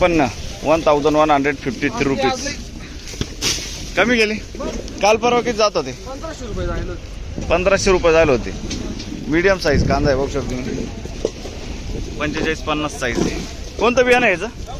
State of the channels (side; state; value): both; identical; correlation 1.00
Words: 1153 रुपीज. कमी गेले. काल परवा किती जात होते. 1500 रुपये झाले होते. मीडियम साईज कांदा आहे. बघू शकतो तुम्ही. 45-50 साईज आहे. कोणतं बियाणं आहे याचं.